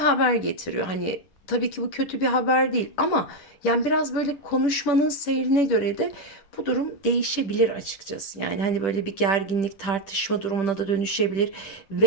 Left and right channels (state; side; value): late; right; 10 ms